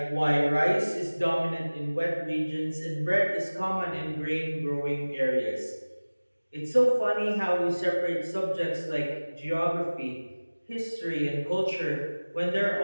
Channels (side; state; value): both; inverted; correlation -1.00